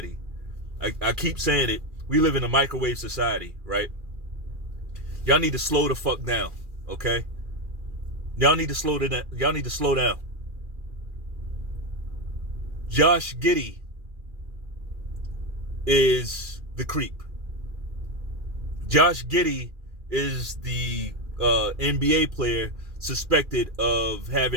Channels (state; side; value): late; left; 2.4 ms